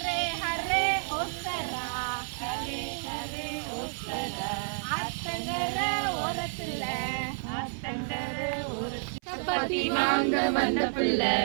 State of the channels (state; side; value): silent; left; 58 dB below the other